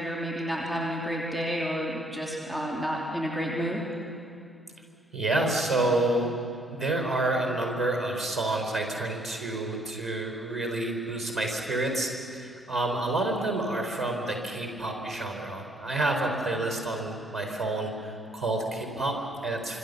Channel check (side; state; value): both; normal; correlation 0.65